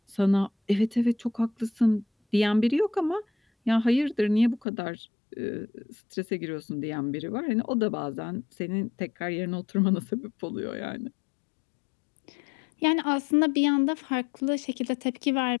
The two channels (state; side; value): drops out; right; at 4.7 s